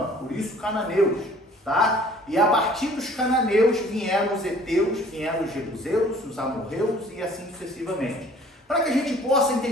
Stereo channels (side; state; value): both; normal; correlation 0.53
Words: por isso cananeus, tá? E a partir dos cananeus vieram os heteus, vieram os jebuseus, os amorreus e assim sucessivamente. Para que a gente possa